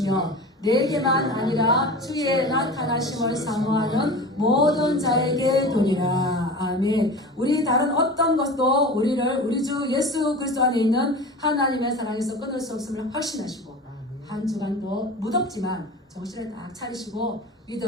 내게만 아니라 주의 나타나심을 사모하는 모든 자에게 도니라. 아멘. 우리 다른 어떤 것도 우리를 우리 주 예수 그리스도 안에 있는 하나님의 사랑에서 끊을 수 없음을 확신하시고 한 주간도 무덥지만 정신을 딱 차리시고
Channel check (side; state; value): both; normal; correlation 0.34